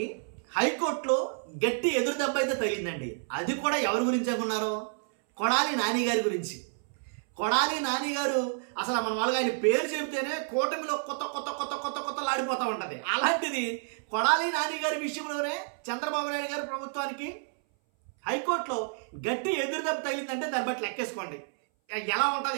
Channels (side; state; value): left; silent; 58 dB below the other